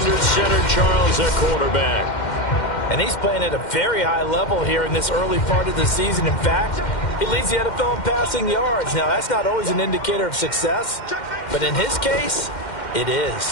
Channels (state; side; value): late; right; 2.1 ms